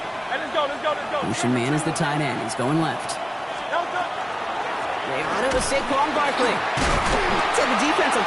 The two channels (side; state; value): both; identical; correlation 1.00